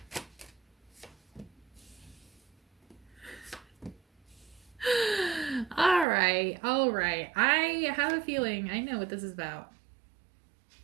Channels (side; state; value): left; drops out; at 6.1 s